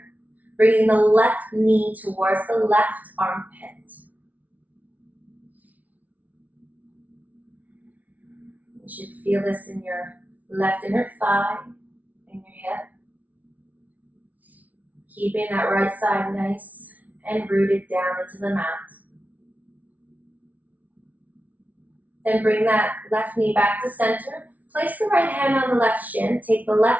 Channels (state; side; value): late; left; 0.073 ms